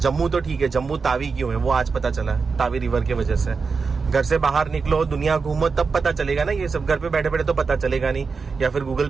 तो ठीक है, जम्मू तावी क्यों है वो आज पता चला, तावी रिवर की वजह से। घर से बाहर निकलो, दुनिया घूमो, तब पता चलेगा ना ये सब। घर पे बैठे बैठे तो पता चलेगा नहीं, या फिर गूगल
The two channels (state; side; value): quieter; left; 4.9 dB